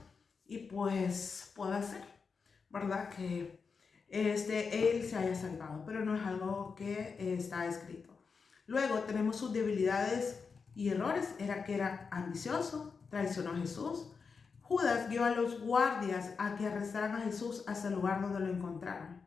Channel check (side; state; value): right; quieter; 5.2 dB